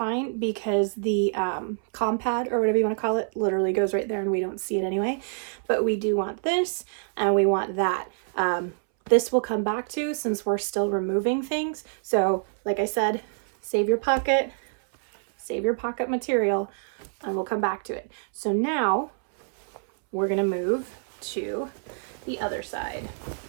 because the pad or whatever you want to call it literally goes right there and we don't see it anyway. But we do want this and we want that. This will come back to, since we're still removing things. So like I said, save your pocket material, and we'll come back to it. So now we're going to move to the other side.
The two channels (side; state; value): left; silent; 61 dB below the other